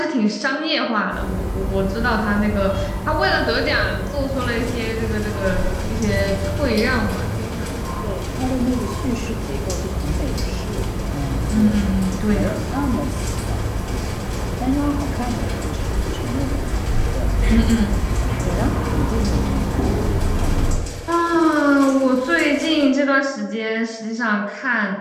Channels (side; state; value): both; identical; correlation 1.00